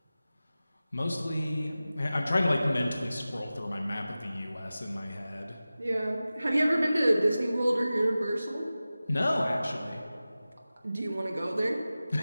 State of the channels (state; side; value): inverted; both; correlation -0.96